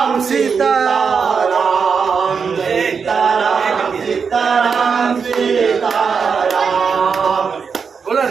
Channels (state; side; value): quieter; left; 5.9 dB